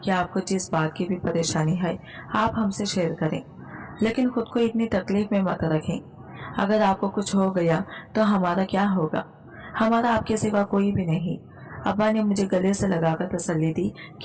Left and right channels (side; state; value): both; identical; correlation 1.00